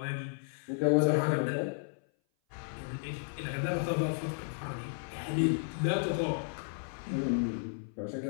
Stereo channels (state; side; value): silent; right; 56 dB below the other